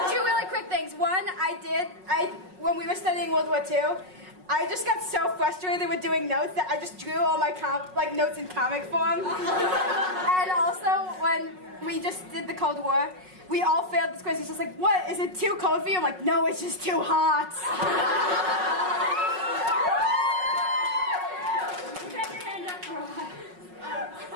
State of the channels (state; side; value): late; left; 5.4 ms